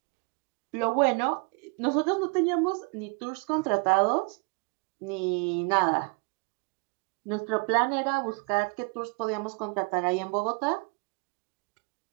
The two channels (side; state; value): left; quieter; 33.8 dB